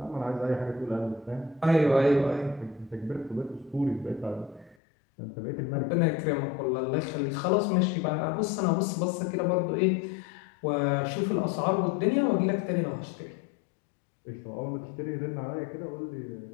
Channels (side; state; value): right; drops out; at 4.8 s